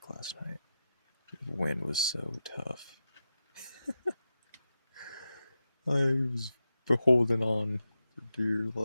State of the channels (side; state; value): both; inverted; correlation -0.90